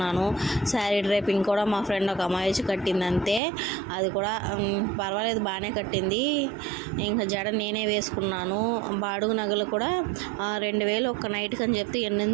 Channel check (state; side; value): drops out; left; at 3.4 s